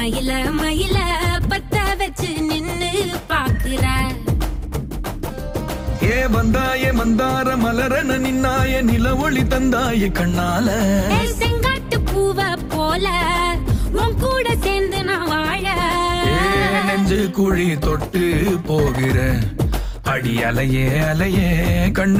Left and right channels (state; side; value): identical; both; correlation 1.00